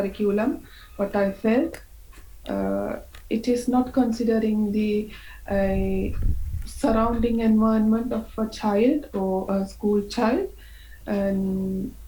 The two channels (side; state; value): both; identical; correlation 1.00